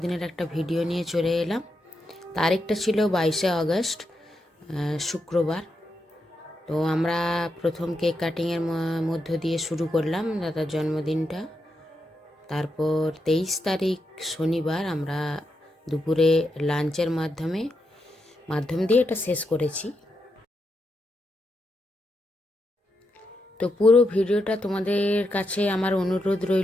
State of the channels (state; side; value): normal; both; correlation 0.84